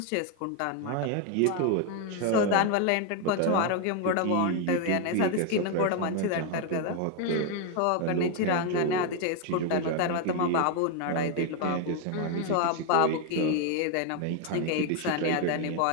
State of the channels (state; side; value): different; both; correlation 0.01